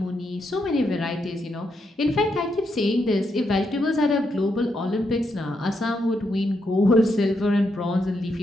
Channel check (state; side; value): normal; both; correlation 0.80